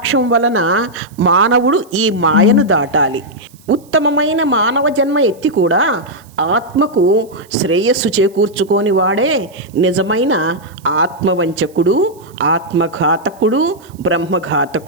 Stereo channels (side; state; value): right; noise; hiss, 28 dB below the sound